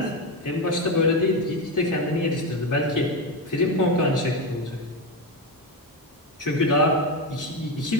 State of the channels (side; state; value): both; normal; correlation 0.13